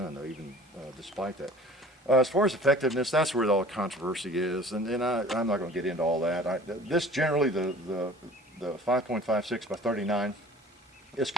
though, even despite that. As far as effectiveness, that's where all the controversy is, and I'm not going to get into all that. This generally, the the 5.56 by 39 is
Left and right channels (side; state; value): both; normal; correlation 0.46